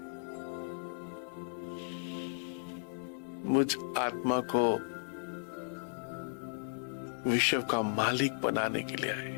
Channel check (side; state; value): right; silent; 54 dB below the other